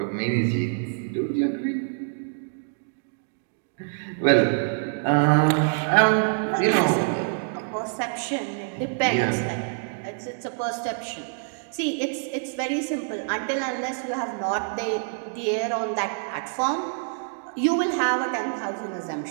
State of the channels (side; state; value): left; silent; digital silence